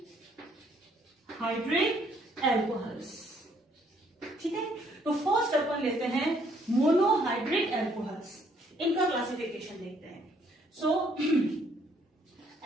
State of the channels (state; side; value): normal; both; correlation 0.66